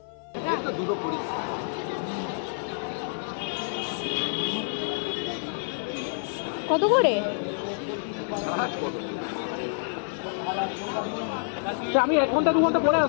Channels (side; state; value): right; silent; 58 dB below the other